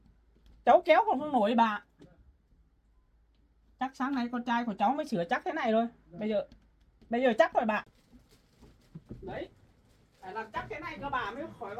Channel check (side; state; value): both; identical; correlation 1.00